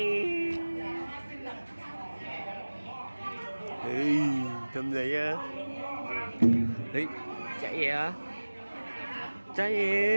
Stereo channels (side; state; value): both; inverted; correlation -1.00